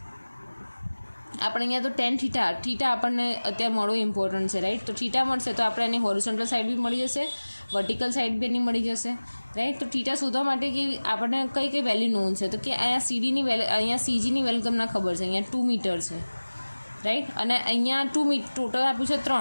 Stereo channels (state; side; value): inverted; both; correlation -1.00